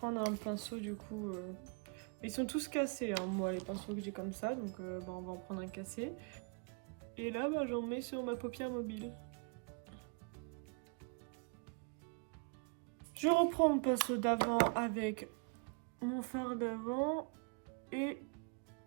un pinceau, du coup... Ils sont tous cassés, hein, moi, les pinceaux que j'ai comme ça. Donc, bah, on va en prendre un cassé. Et là, bah, j'en mets sur ma paupière mobile. Je reprends mon pinceau d'avant avec mon fard d'avant et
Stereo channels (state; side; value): quieter; left; 35.5 dB